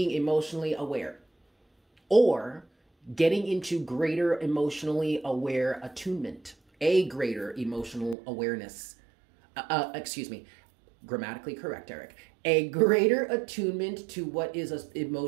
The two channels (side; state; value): left; drops out; at 8.2 s